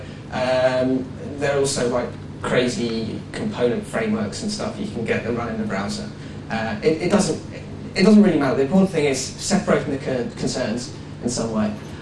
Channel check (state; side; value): identical; both; correlation 1.00